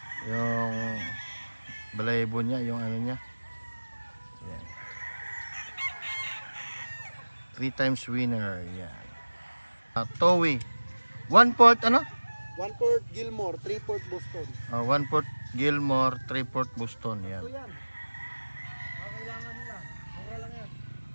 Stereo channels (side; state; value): both; inverted; correlation -1.00